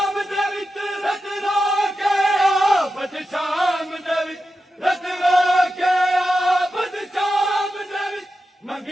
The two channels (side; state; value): both; normal; correlation 0.90